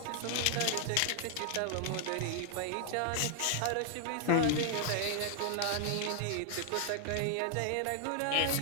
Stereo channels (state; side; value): different; both; correlation 0.00